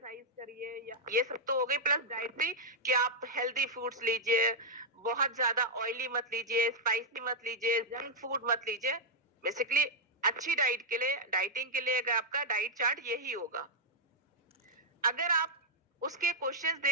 करिए, या ये सब तो हो गई। प्लस डाइटरी कि आप हेल्दी फूड्स लीजिए, बहुत ज्यादा ऑयली मत लीजिए, स्पाइसी मत लीजिए, जंक फूड मत लीजिए। बेसिकली अच्छी डाइट के लिए, डाइटिंग के लिए अगर आपका डाइट चार्ट यही होगा। अगर आप उसके क्वेश्चंस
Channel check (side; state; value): both; normal; correlation -0.04